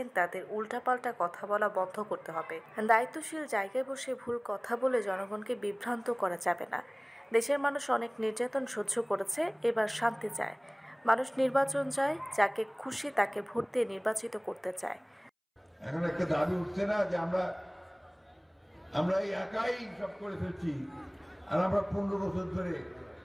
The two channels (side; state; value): both; identical; correlation 1.00